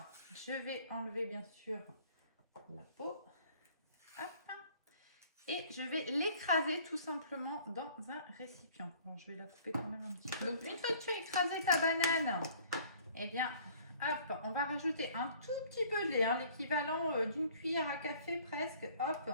je vais enlever bien sûr la peau. Hop. Et je vais l'écraser tout simplement dans un récipient. Bon, je vais la couper quand même un petit peu. Donc une fois que tu as écrasé ta banane, eh bien, hop, on va rajouter un tout petit peu de lait, hein, l'équivalent d'une cuillère à café presque. Hop,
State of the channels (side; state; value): both; inverted; correlation -0.54